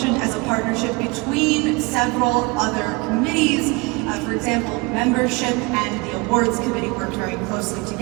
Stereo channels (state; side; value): quieter; left; 26.9 dB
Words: as a partnership between several other committees. For example, membership and the awards committee worked very closely